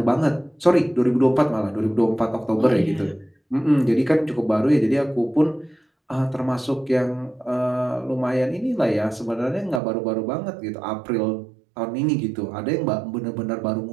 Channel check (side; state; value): left; drops out; at 9.8 s